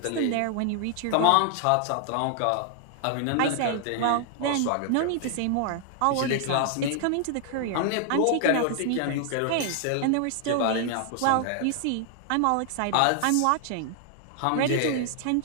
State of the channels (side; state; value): both; different; correlation 0.00